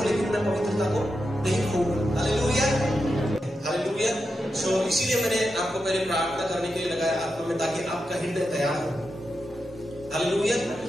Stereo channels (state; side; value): normal; both; correlation 0.88